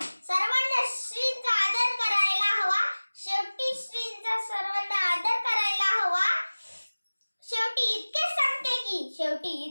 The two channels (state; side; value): inverted; both; correlation -1.00